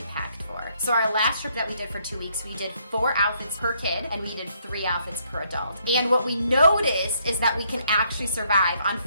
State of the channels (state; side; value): inverted; both; correlation -0.71